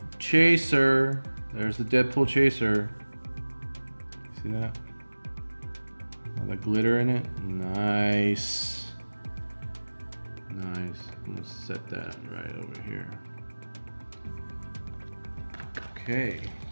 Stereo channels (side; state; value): both; inverted; correlation -1.00